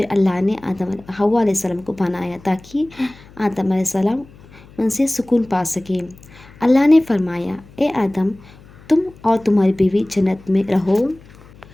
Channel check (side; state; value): left; noise; hum, 23 dB below the sound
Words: अल्लाह ने हव्वा अलैहिस्सलाम को बनाया ताकि आदम अलैहिस्सलाम उनसे सुकून पा सके। अल्लाह ने फरमाया, ए आदम, तुम और तुम्हारी बीवी जन्नत में रहो,